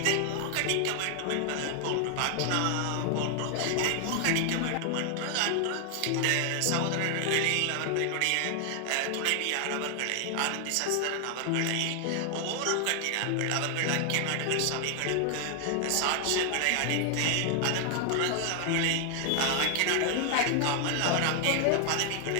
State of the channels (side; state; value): both; different; correlation 0.00